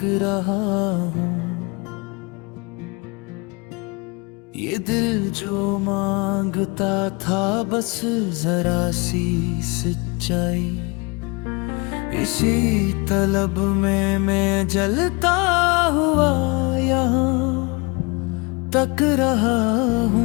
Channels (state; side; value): quieter; right; 28.4 dB